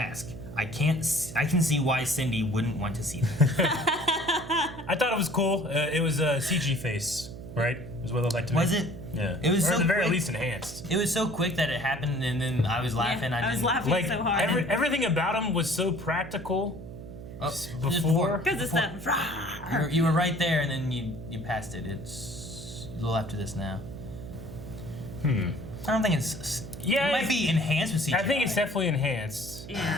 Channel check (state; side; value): noise; right; hum, 13 dB below the sound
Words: I can see why Cindy wouldn't want to see that." I thought it was cool. It was a CG face, right? Is what it looked like to me. Was it? Yeah. It was or so at the very quick. least enhanced. It was so quick that it happened, and then I was laughing. I was laughing Like so hard. everything about him was so practical. Just Before? Because it's that. You were right there, and then you passed it. It's a little after this now. I don't think it's. Yeah, it might be enhanced with CGI. I think it's definitely enhanced.